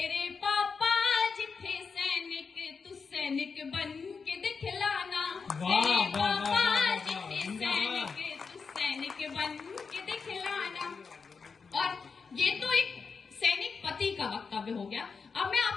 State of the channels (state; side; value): quieter; right; 5.2 dB